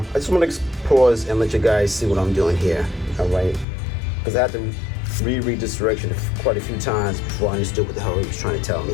just want to pause and let you guys see what I'm doing here. All right, because I had to reread this direction quite a few times before I understood what the hell he was trying to tell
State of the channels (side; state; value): right; drops out; at 3.7 s